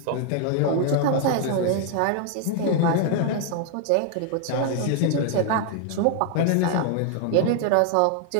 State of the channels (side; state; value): both; different; correlation 0.00